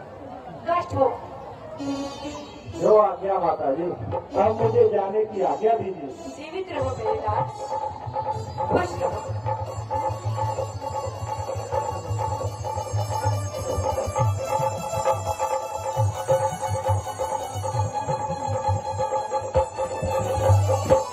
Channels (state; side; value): identical; both; correlation 1.00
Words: कष्ट हो। जो आज्ञा माता जी, अब मुझे जाने की आज्ञा दीजिए। जीवित रहो मेरे लाल, खुश रहो।